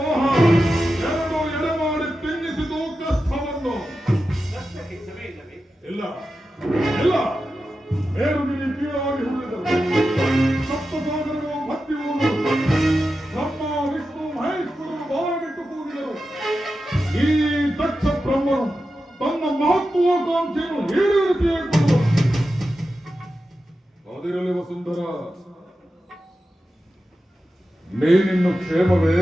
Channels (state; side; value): normal; both; correlation 0.91